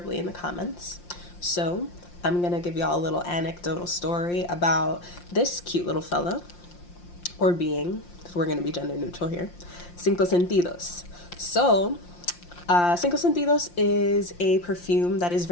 in the comments. So I'm going to give y'all a little anecdotal story about this cute little fellow or being, if we're going to be gender neutral here, Cinco Sentidos. So, Cinco Sentidos is a perfume that is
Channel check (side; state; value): right; late; 5.7 ms